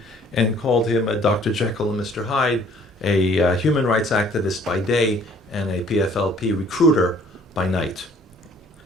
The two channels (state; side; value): normal; both; correlation 0.57